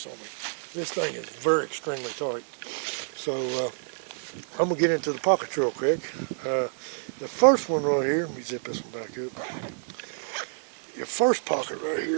on me. This thing is very extremely tight. So I'm going to get into the pockets real quick. The first one right here, let me zip this one back up. Your first pocket right here,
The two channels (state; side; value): silent; left; digital silence